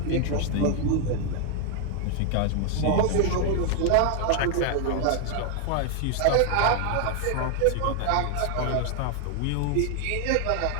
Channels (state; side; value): different; both; correlation 0.00